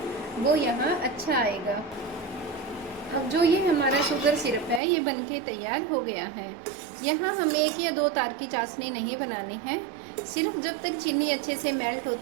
वो यहाँ अच्छा आएगा। अब जो ये हमारा शुगर सिरप है ये बनके तैयार हो गया है। यहाँ हमें 1 या 2 तार की चाशनी नहीं बनानी है, सिर्फ जब तक चीनी अच्छे से मेल्ट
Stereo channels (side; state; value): left; drops out; at 4.8 s